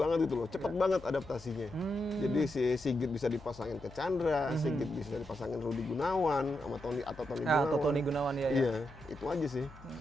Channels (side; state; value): left; noise; hum, 19 dB below the sound